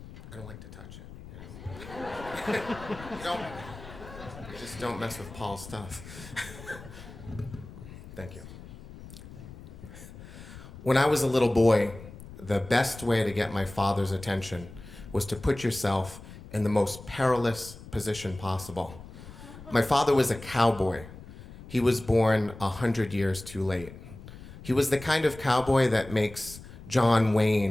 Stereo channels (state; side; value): noise; left; rumble, 15 dB below the sound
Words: don't like to touch it, you know? You just don't mess with Paul's stuff. Thank you. When I was a little boy, the best way to get my father's attention was to put yourself in the most perilous position possible. My father was a cowboy. He was born 100 years too late. He was the kind of cowboy that makes John